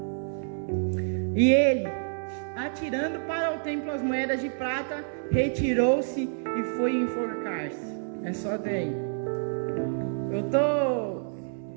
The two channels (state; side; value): silent; left; 59 dB below the other